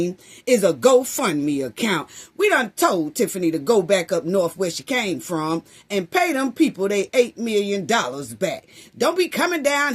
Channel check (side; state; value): both; identical; correlation 1.00